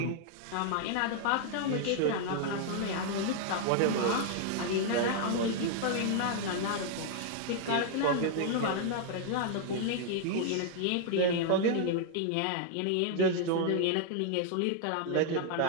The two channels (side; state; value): both; different; correlation 0.00